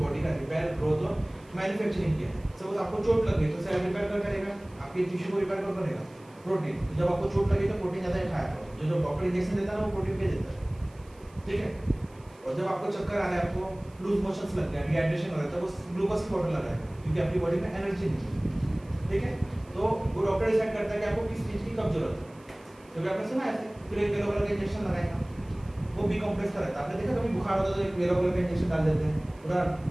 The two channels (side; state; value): right; noise; hiss, 29 dB below the sound